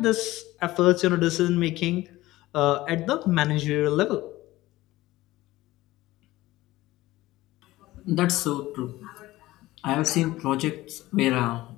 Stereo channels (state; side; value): quieter; right; 17.5 dB